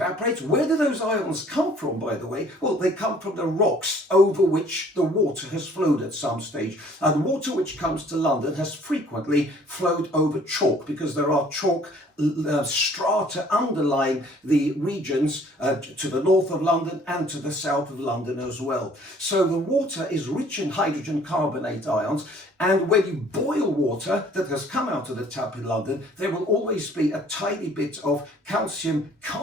where do those ions come from, by the way? Well, they come from the rocks over which the water has flowed at some stage. And water which comes to London has frequently flowed over chalk, because there are chalk strata underlying the regions to the north of London and to the south of London as well. So the water is rich in hydrogen carbonate ions, and when you boil water that has come out of the tap in London, there will always be a tiny bit of calcium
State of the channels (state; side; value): normal; both; correlation 0.56